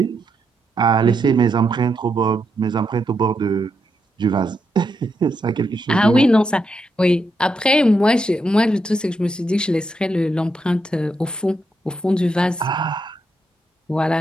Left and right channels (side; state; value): both; normal; correlation 0.82